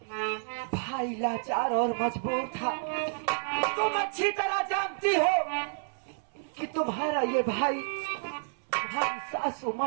भाई लाचार और मजबूर था। तुम अच्छी तरह जानती हो कि तुम्हारा ये भाई तुम्हारी सासू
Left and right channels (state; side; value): silent; left; 58 dB below the other